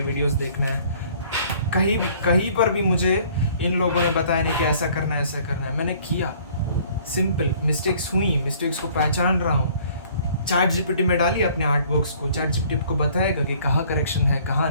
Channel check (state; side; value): inverted; both; correlation -0.56